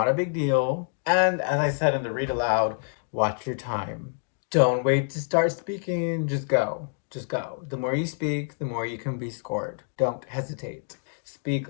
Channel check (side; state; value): right; silent; digital silence